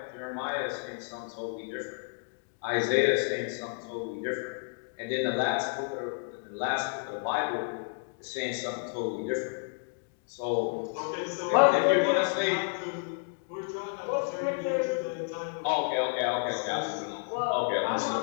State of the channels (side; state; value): right; silent; 57 dB below the other